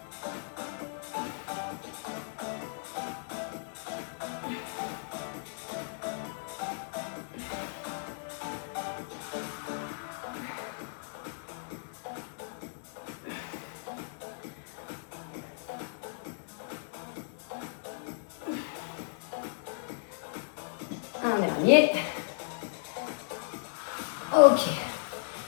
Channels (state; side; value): silent; right; 55 dB below the other